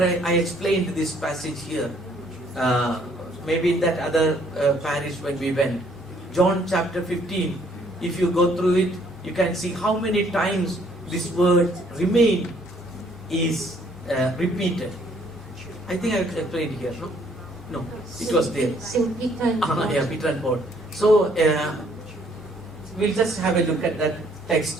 I explained this passage here. Maybe in that other parish when we went. John chapter 15. If you go through it, you can see how many times this word remain is repeated. I think I explained here, no? No, it was there. Peter and Paul. So, we'll just have a look at that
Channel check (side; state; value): both; normal; correlation 0.64